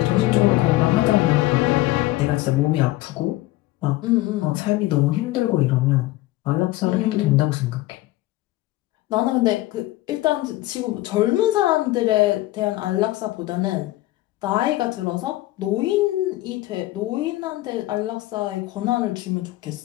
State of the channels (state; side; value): quieter; right; 17.5 dB